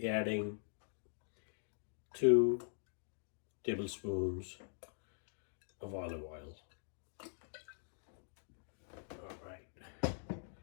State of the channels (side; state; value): right; silent; digital silence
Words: adding 2 tablespoons of olive oil. All right.